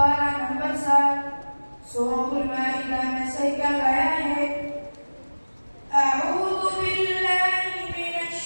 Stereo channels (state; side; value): inverted; both; correlation -1.00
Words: number 7 Surah Al-Ma'idah Masaikan ayat أعوذ بالله من